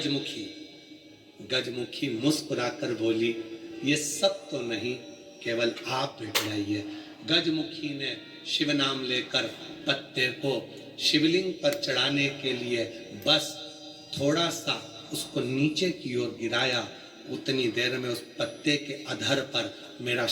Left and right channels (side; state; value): both; identical; correlation 1.00